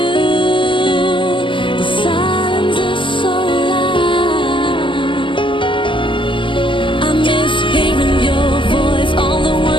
The silence is so loud. I miss hearing your voice, all the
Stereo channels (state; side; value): late; right; 0.25 ms